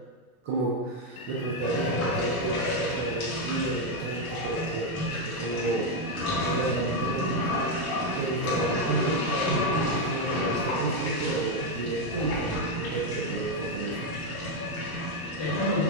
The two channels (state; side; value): late; right; 1.2 ms